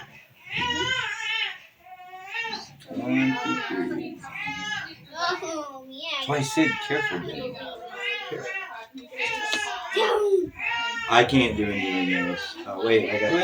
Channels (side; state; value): both; identical; correlation 1.00